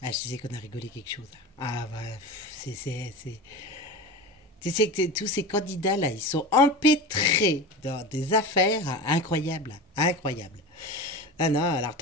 Ah, je disais qu'on a rigolé quelque chose. Ah bah c'est tu sais que tous ces candidats là, ils sont empêtrés dans des affaires incroyables, incroyables. Ah non, alors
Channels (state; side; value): normal; both; correlation 0.29